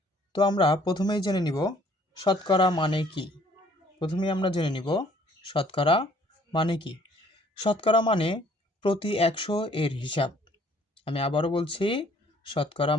তো আমরা প্রথমেই জেনে নিব শতকরা মানে কি। প্রথমেই আমরা জেনে নিব শতকরা মানে কি। শতকরা মানে প্রতি 100 এর হিসাব। আমি আবারও বলছি, শতকরা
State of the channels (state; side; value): normal; both; correlation 0.60